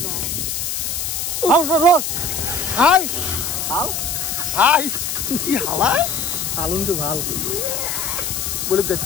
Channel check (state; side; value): noise; left; hiss, 2 dB below the sound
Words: না রোড হাই কি হালা হালুনটো ভাল বলো guys